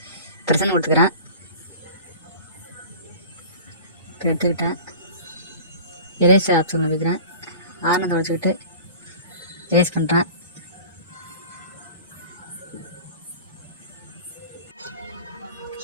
ப்ரெசன்ட் கொடுத்துக்கிறேன். இப்போ எடுத்துக்கிட்டேன். எரேசர் ஆப்ஷனில் போய்க்கிறேன். ஆனந்தை வச்சுக்கிட்டு எரேஸ் பண்ணுறேன்.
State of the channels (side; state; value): both; inverted; correlation -0.40